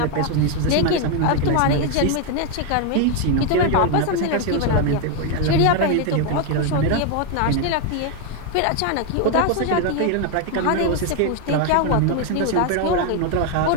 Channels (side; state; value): both; different; correlation 0.01